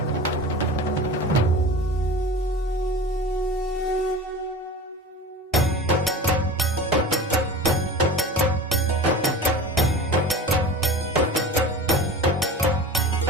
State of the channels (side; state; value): both; normal; correlation 0.35